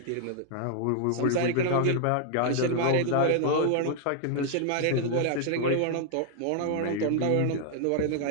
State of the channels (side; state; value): both; different; correlation 0.00